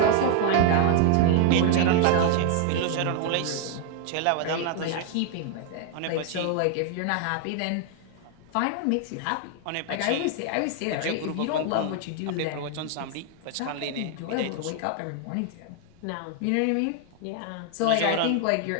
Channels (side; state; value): both; different; correlation 0.00